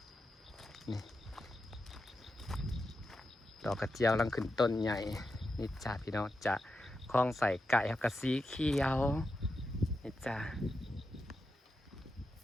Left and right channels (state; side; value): normal; both; correlation 0.88